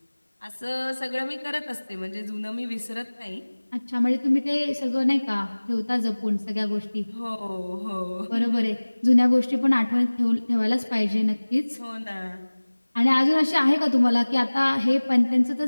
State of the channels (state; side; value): inverted; both; correlation -1.00